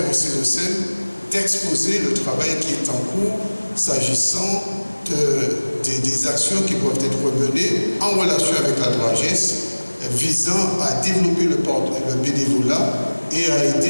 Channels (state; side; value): inverted; both; correlation -1.00